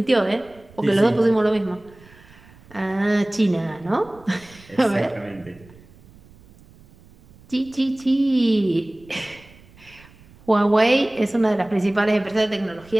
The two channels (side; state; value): right; noise; rumble, 25 dB below the sound